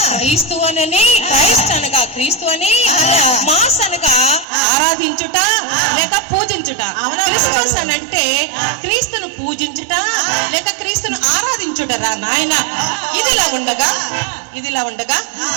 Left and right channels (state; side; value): drops out; left; at 4.5 s